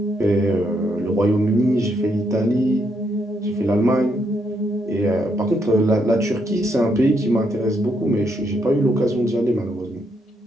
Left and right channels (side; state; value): both; normal; correlation 0.77